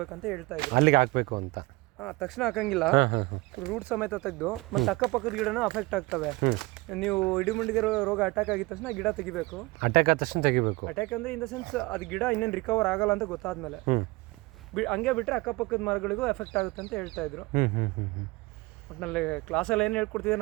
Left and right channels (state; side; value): quieter; left; 23.0 dB